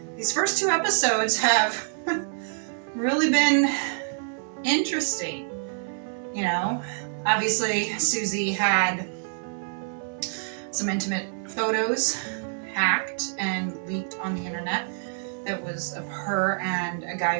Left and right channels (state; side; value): silent; left; 60 dB below the other